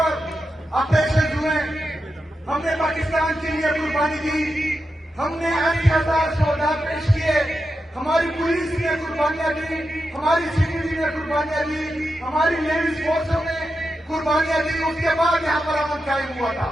آپریشن ہوئے, ہم نے پاکستان کے لیے قربانی دی, ہم نے 80,000 شہداء پیش کیے, ہماری پولیس نے قربانیاں دی, ہماری سیکورٹی نے قربانیاں دی, ہماری لیڈیز فورسوں نے قربانیاں دی. اس کے بعد یہاں پر امن قائم ہوا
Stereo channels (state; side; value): normal; both; correlation 0.88